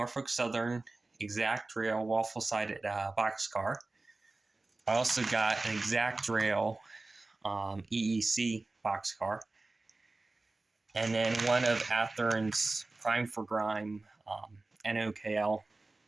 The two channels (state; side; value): quieter; left; 3.2 dB